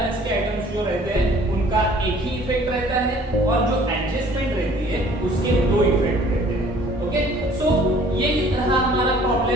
के आइटम्स जो रहते हैं उनका एक ही इफेक्ट रहता है और जो एडजस्टमेंट रहती है उसके दो इफेक्ट रहते हैं। ओके, सो ये रहा हमारा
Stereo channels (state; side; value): normal; both; correlation 0.54